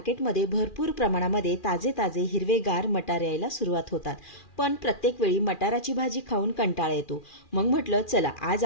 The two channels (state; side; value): late; right; 2.4 ms